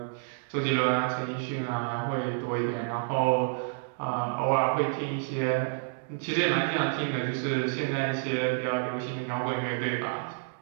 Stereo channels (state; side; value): silent; left; digital silence